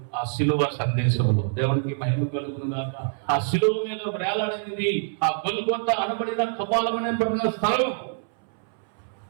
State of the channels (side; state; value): left; silent; 61 dB below the other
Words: ఆ శిలువ సందేశంలో. దేవునికి మహిమ కలుగునుగాక. ఆ శిలువ మీద వేలాడనిది ఆ గొల్గొతా అనబడిన కపాలమైనటువంటి స్థలం